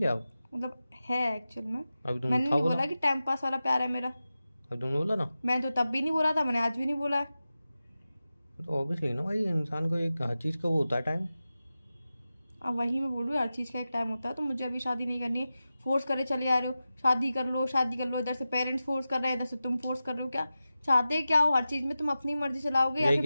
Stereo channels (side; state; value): both; inverted; correlation -0.93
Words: मतलब है एक्चुअल में। अभी तुमने मैंने था नहीं बोला, बोला कि टाइम पास वाला प्यार है मेरा। अभी तुमने बोला ना। मैं तो तब भी नहीं बोला था, मैंने आज भी नहीं बोला है। तो ऑब्वियसली ना भाई, इंसान को एक हर चीज़ का वो होता है टाइम। अब वही मैं बोल रही हूँ, हर चीज़ का एक टाइम होता है। तो मुझे अभी शादी नहीं करनी है। फोर्स करे चले आ रहे हो, शादी कर लो शादी कर लो। इधर से पेरेंट्स फोर्स कर रहे हैं, इधर से तुम फोर्स कर रहे हो। क्या चाहते क्या हो? हर चीज में तुम अपनी मर्जी चलाओगे या यही फिर